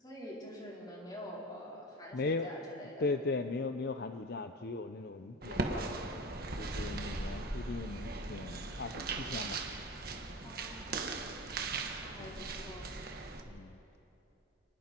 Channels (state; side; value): normal; both; correlation 0.29